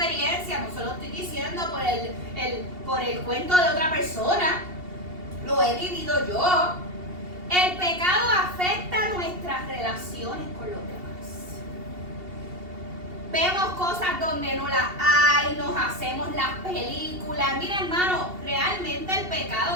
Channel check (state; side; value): late; left; 2.7 ms